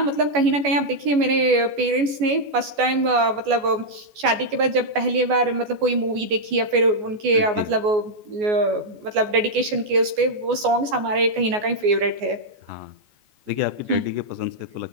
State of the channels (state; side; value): late; left; 14 ms